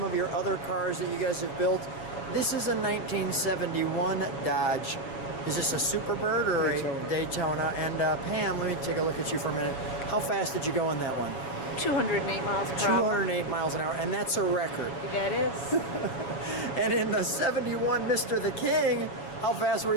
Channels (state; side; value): late; right; 7.2 ms